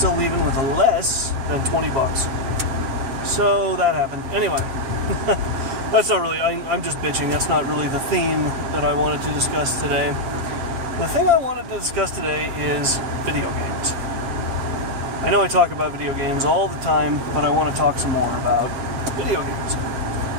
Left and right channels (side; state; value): left; late; 7.4 ms